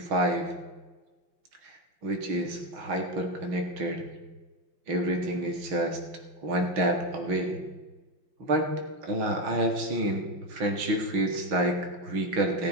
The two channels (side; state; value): left; late; 5.7 ms